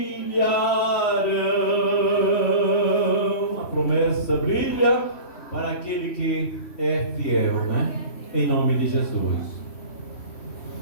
A promessa brilha para aquele que é fiel, né? Em nome de Jesus.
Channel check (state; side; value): late; right; 3.1 ms